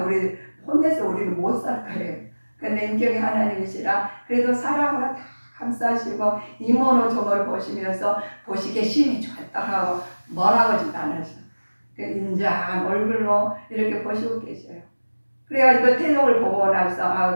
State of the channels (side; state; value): both; inverted; correlation -1.00